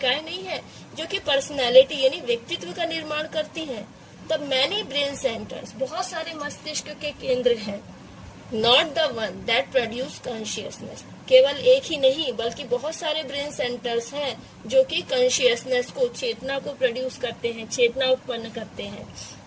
नहीं है जो कि पर्सनैलिटी यानी व्यक्तित्व का निर्माण करती हैं? द मैनी ब्रेन सेंटर्स, बहुत सारे मस्तिष्क के केंद्र हैं। Not the one that produce consciousness, केवल एक ही नहीं बल्कि बहुत सारे ब्रेन सेंटर्स हैं जो कि कॉन्शियसनेस को, चेतना को प्रोड्यूस करते हैं, चेतना उत्पन्न करते हैं।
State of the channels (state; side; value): identical; both; correlation 1.00